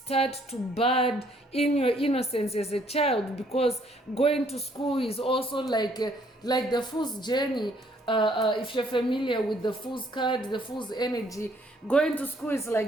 to bud in your innocence as a child, because going to school is also like the fool's journey. If you're familiar with the fool's card, the fool's energy, going to school is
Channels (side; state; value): both; normal; correlation 0.65